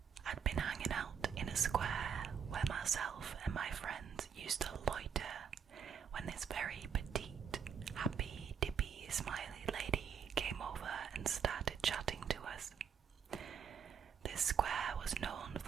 I'd been hanging out in a square where myself and my friends used to loiter when this very petite, happy, dippy, smiley lady came over and started chatting to us. This square was known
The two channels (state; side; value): quieter; left; 7.3 dB